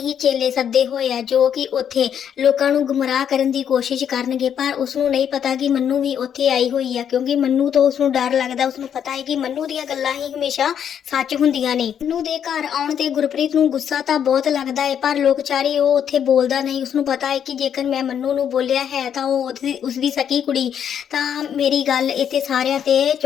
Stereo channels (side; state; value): right; quieter; 8.7 dB